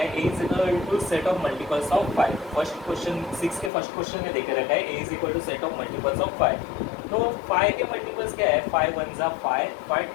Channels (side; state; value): right; drops out; at 3.7 s